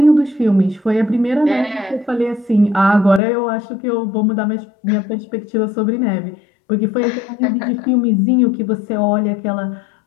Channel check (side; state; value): right; drops out; at 3.2 s